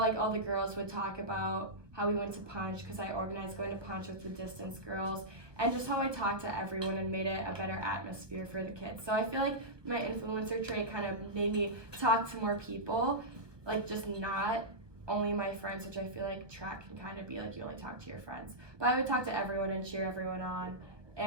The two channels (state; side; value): late; left; 1.1 ms